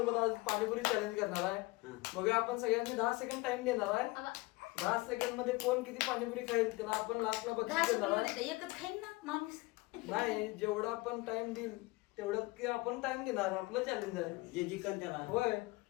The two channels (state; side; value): quieter; right; 22.6 dB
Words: आज पाणीपुरी चॅलेंज करणार आहे. बघूया, आपण सगळ्यांनी 10 सेकंड टाइम देणार आहे. 10 सेकंड मध्ये कोण किती पाणीपुरी खाईल त्याला आपण लास्टला बक्षीस देणार आहे. एकच खाईन ना माणूस. नाही, जेवढा आपण टाइम देईल तेवढं की आपण टाइम देणार. आपलं चॅलेंज आहे. जे जिंकन त्याला होय,